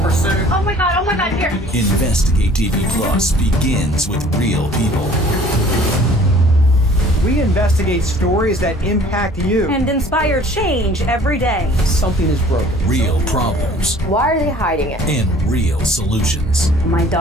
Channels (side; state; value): both; normal; correlation 0.52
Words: pursuit. Oh my God, here. Investigate TV Plus begins with real people. We investigate stories that impact you and inspire change every day. Something is broken. Real problems. Why are they hiding it? And real solutions. My